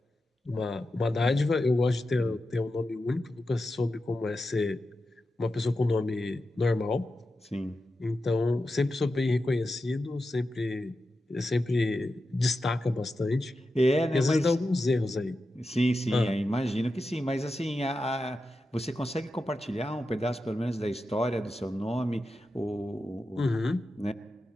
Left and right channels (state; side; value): normal; both; correlation 0.90